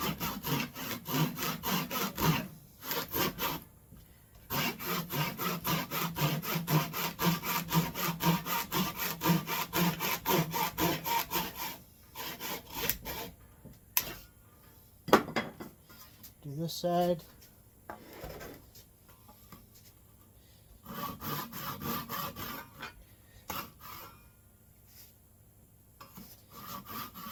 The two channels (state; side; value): identical; both; correlation 1.00